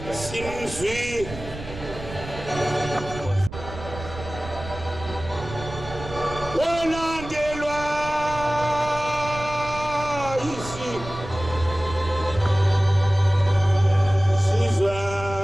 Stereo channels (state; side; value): noise; right; rumble, 12 dB below the sound